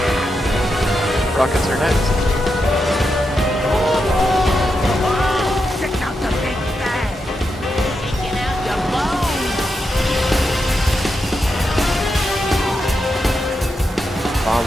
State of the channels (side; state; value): both; normal; correlation 0.86